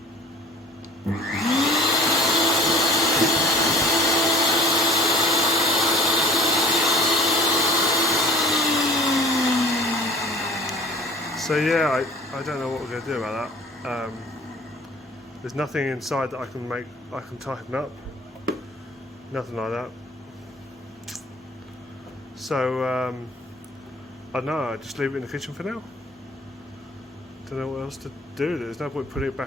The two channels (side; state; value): both; normal; correlation 0.48